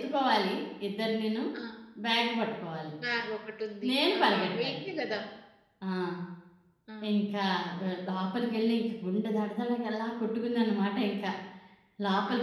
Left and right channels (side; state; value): both; identical; correlation 1.00